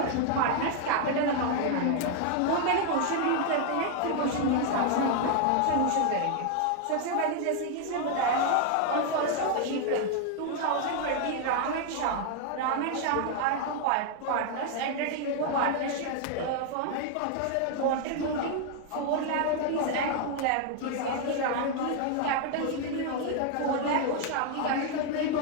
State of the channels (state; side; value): different; both; correlation 0.00